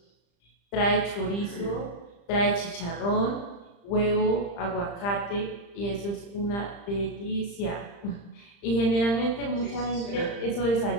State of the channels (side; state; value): right; late; 35 ms